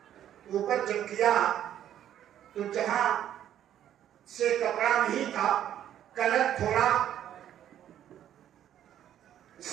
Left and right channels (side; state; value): left; quieter; 10.9 dB